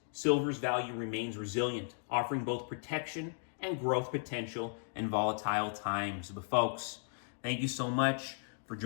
silver's value remains resilient, offering both protection and growth potential in volatile times. But folks, thank you so much for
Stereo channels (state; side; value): silent; right; digital silence